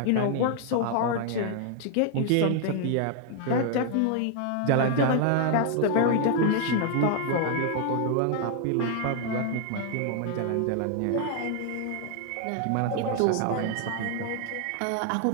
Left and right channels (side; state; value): both; different; correlation 0.00